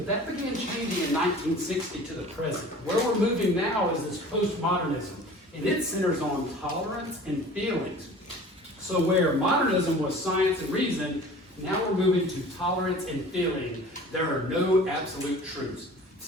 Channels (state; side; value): normal; both; correlation 0.44